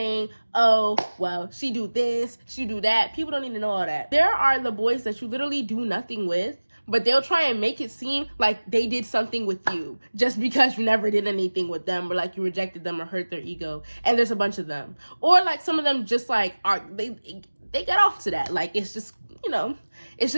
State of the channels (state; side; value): inverted; both; correlation -1.00